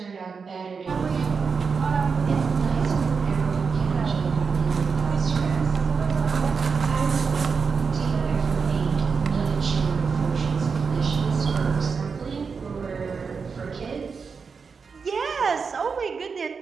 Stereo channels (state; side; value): quieter; left; 5.4 dB